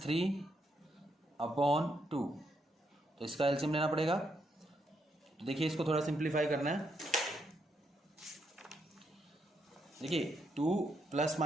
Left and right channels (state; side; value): normal; both; correlation 0.78